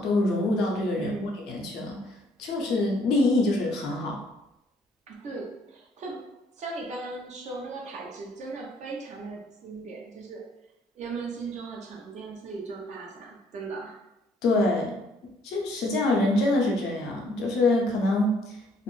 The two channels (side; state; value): both; normal; correlation 0.65